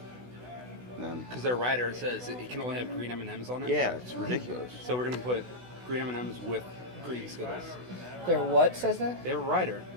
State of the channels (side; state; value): left; late; 16 ms